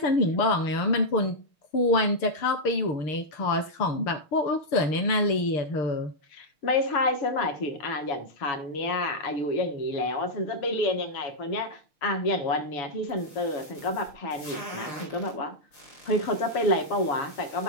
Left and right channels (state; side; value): late; right; 6.5 ms